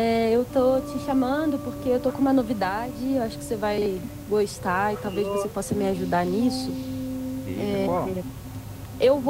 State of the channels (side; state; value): both; identical; correlation 1.00